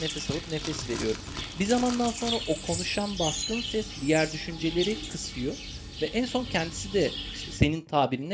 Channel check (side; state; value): both; identical; correlation 1.00